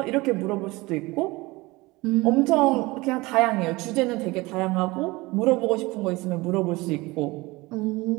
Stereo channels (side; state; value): left; quieter; 22.1 dB